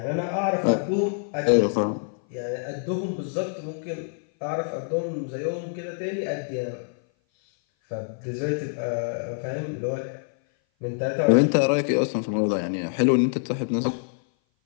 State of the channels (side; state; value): right; silent; 57 dB below the other